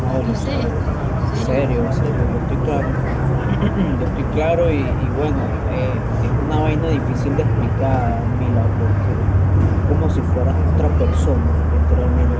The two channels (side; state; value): both; identical; correlation 1.00